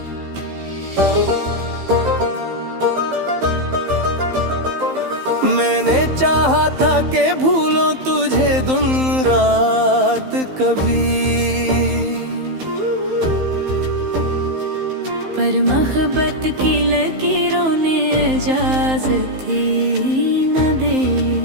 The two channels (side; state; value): left; late; 15 ms